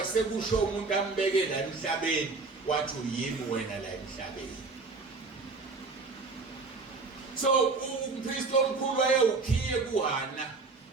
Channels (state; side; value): quieter; left; 3.9 dB